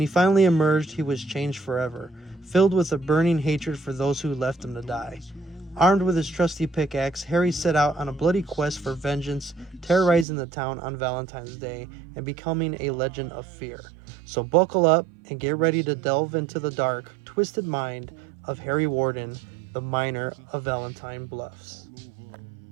finally emerged, he was changed forever, filled with a burning hatred for those who left him to die. Armed with his trusty pickaxe, Harry set out on a bloody quest for vengeance, terrorizing the town on Valentine's Day and becoming a legend of fear. So buckle up and get ready to delve into the dark, twisted mind of Harry Warden, the miner of Valentine Bluffs.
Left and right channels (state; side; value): drops out; left; at 10.2 s